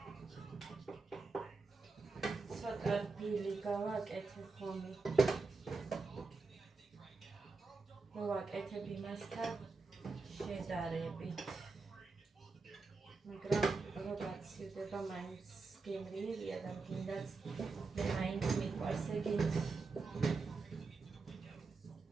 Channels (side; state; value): left; quieter; 4.1 dB